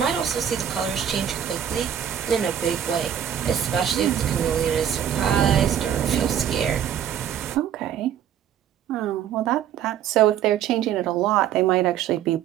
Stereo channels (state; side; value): quieter; left; 9.6 dB